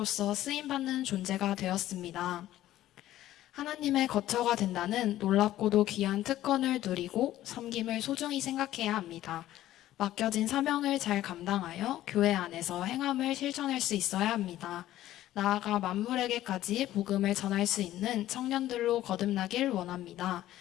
쓰임받는 존재가 되었습니다. 하나님의 거처가 된다는 놀랍고도 귀한 특권을 누리고 섬김을 소중히 생각해야 합니다. 맡겨진 사명을 잘 감당하여 교회 안에서 행함을 실천할 수 있어야 합니다. 나아가 만물에게까지 복음을 전할 수 있는 청년들로 거듭나길 원합니다.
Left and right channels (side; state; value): right; quieter; 13.9 dB